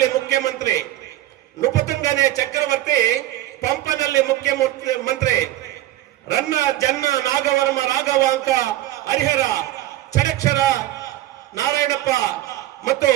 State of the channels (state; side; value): quieter; left; 15.0 dB